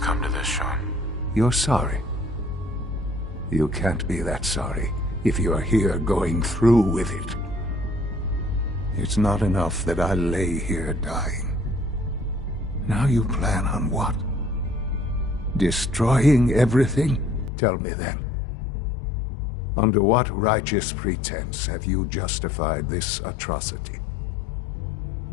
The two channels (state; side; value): drops out; right; at 17.5 s